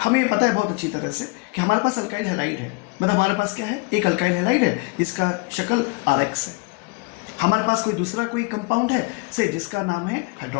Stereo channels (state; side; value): quieter; right; 28.1 dB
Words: हमें ये पता है बहुत अच्छी तरह से कि हमारे पास अल्काइल हैलाइड है। मतलब हमारे पास क्या है, एक अल्काइल हैलाइड है जिसका शक्ल RX है। हमारे पास कोई दूसरा कोई कंपाउंड है से जिसका नाम है